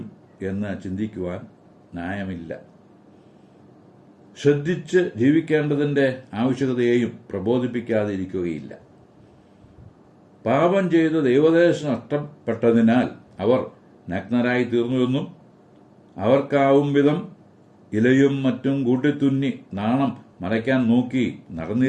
എന്ന് ചിന്തിക്കുവാൻ ന്യായമില്ല. ശ്രദ്ധിച്ച് ജീവിക്കേണ്ടതിന്റെ ആവശ്യകതയെയും പ്രബോധിപ്പിക്കാതെ ഇരിക്കുകയില്ല. പാപം ചെയ്ത് ദൈവദേശം നഷ്ടപ്പെട്ടതിനാൽ അവർ നഗ്നരായി തീർന്നുവെന്നും അവർക്കാവും വിധം ഇലയും മറ്റും കൂട്ടിത്തുന്നി നാണം മറയ്ക്കാൻ നോക്കി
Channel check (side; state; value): both; identical; correlation 1.00